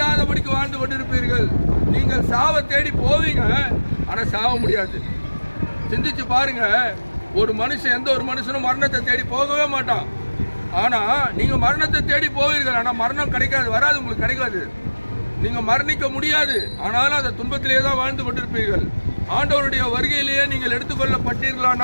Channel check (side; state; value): both; inverted; correlation -1.00